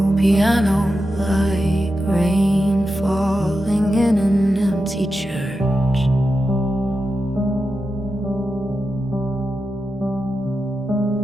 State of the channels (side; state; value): both; normal; correlation 0.90